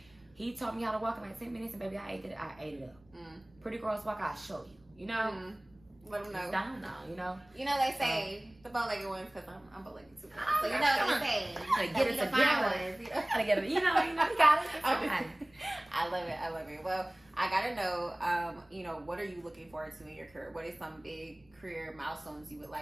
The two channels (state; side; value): noise; right; rumble, 29 dB below the sound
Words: he taught me how to walk in like 10 minutes, and baby, I ate it up. Pretty girls walk, I'll show you, you know. Let them know. It's down now, you know. You know they say the bow-legged ones, because I'm bow-legged too. So you know what they say. Get it together. Gotta get it. You know, you got it. I love it. Well, I gotta know, you know, what are you looking forward to in your career? What are some big career milestones you would